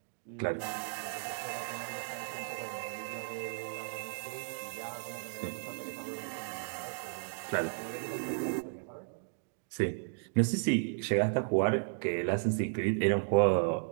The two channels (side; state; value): left; silent; digital silence